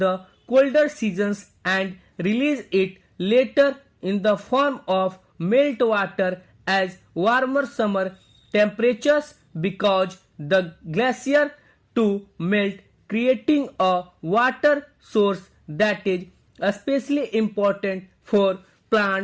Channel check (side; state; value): both; identical; correlation 1.00